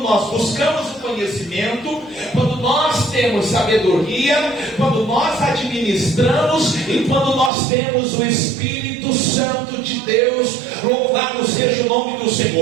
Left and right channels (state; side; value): drops out; left; at 7.5 s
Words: nós buscamos o conhecimento, quando nós temos sabedoria, quando nós administramos e quando nós temos o Espírito Santo de Deus. Louvado seja o nome do